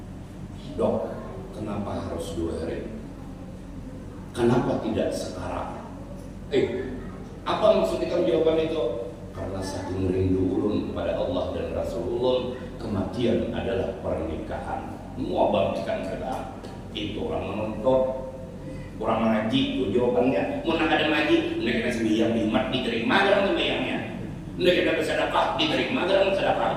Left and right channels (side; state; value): both; identical; correlation 1.00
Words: Dok, kenapa harus 2 hari? Kenapa tidak sekarang? Apa maksud ikam jawaban itu? Karena saking rindu ulun kepada Allah dan Rasulullah, kematian adalah pernikahan. Mau bangkitan kita, itu orang menonton, orang mengaji, itu jawabannya. Mau nak ada ngaji, mereka sembiang bimat diterima dalam sembiangnya. Mereka bersedekah diterima dalam